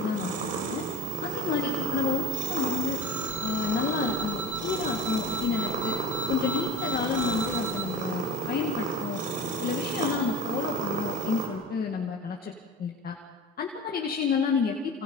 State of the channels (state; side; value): normal; both; correlation 0.34